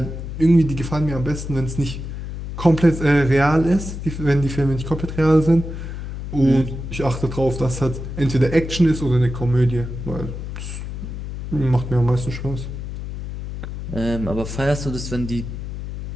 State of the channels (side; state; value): left; noise; hum, 7 dB below the sound